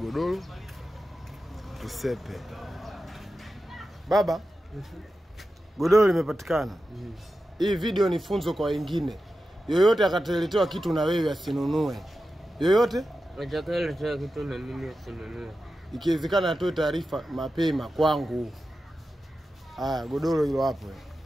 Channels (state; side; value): normal; both; correlation 0.92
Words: Tusepe. Baba? Godoro limepatikana. Hii video ni funzo kwa wengine. Yoyote akateletewa kitu na wewe asinunue. Yoyote? Atakayeletewa kitu na mimi asinunue. Ikiwezekana atoe taarifa mapema kwangu. Haya, godoro hilo hapo.